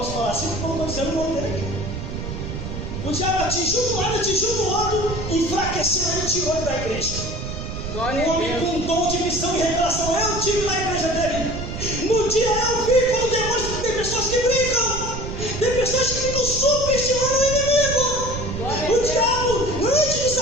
falar assim porque eu não estou dizendo o nome dele aqui. O diabo atingiu um lado, atingiu no outro, enfraqueceu ele e tirou ele da igreja. Glória Um a homem Deus. com dom de visão e revelação, eu tive na igreja dele. No dia eu vi como demônios, tem pessoas que brincam, tem pessoas que ficam subestimando o inimigo. Glória a O Deus. diabo, antes de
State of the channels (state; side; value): noise; right; rumble, 6 dB below the sound